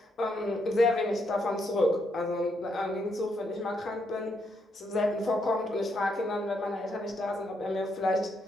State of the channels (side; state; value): both; normal; correlation 0.77